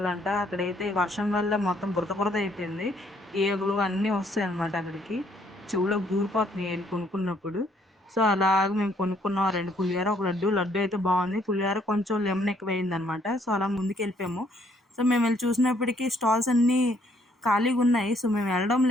20 అక్కడైతే వర్షం వల్ల మొత్తం బురద బురద అయిపోయింది. ఈగలు అన్నీ వస్తాయన్నమాట అక్కడికి. చెవులోకి దూరిపోతున్నాయి ఎళ్లి కొనుక్కున్నప్పుడు. సో, అలాగ మేము కొనుక్కున్నాం 2 పులిహోర, ఒక లడ్డు. లడ్డు అయితే బావుంది. పులిహోర కొంచెం లెమన్ ఎక్కువయిందనమాట. సో, అలా ముందుకెళ్ళిపోయాము. సో, మేమెళ్లి చూసినప్పటికి స్టాల్స్ అన్నీ ఖాళీగున్నాయి. సో, మేము వెళ్ళడం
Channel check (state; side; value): normal; both; correlation 0.67